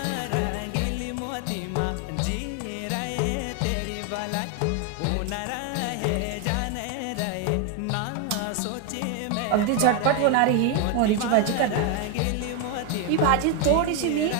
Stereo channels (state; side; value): different; both; correlation 0.01